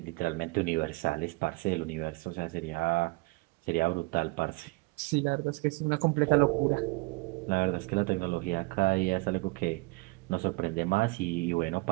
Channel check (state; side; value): quieter; left; 25.8 dB